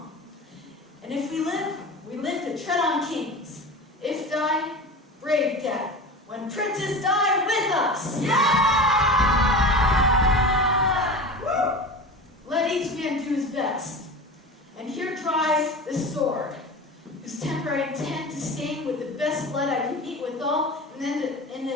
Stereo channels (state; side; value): normal; both; correlation 0.31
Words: And if we live to tread on kings. If die, brave death. When princes die with us. Woo! Let each man do his best. And here try the sword, whose temper I intend to stain with the best blood I can meet withal, and then in